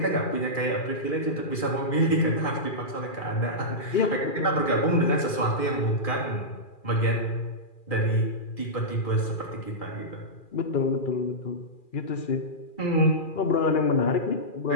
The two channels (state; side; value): late; right; 2.4 ms